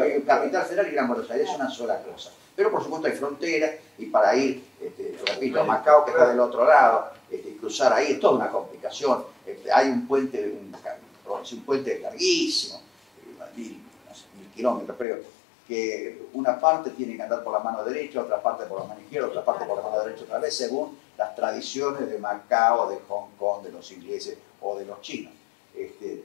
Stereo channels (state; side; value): drops out; right; at 15.1 s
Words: Capital Federal y Gran Buenos Aires es una sola cosa. Pero por supuesto hay fronteras, y para ir, repito, a Macao, que está del otro lado, cruzar ahí es toda una complicación. Hay un puente larguísimo, 1000 kilómetros, creo, que una parte tiene que andar por la mano derecha, otra parte por la mano izquierda, otra parte por la mano derecha otra vez, según las tradiciones de Macao, de Hong Kong, de los ingleses o de los chinos.